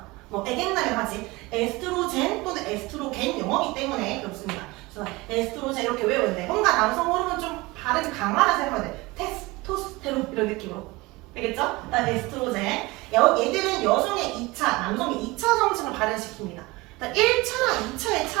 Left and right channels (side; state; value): left; quieter; 22.4 dB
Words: 뭐 에겐남이라고 하지. 에스트로젠 또는 에스트로겐 용어이기 때문에 그렇습니다. 그래서 에스트로젠 이렇게 외우는데 뭔가 남성 호르몬 좀 발음이 강하다 생각하면 돼. 테스토스테론 이런 느낌으로. 알겠죠? 일단 에스트로젠. 얘들은 여성의 2차, 남성의 2차 성징을 발현시킵니다. 일단 1차랑 2차의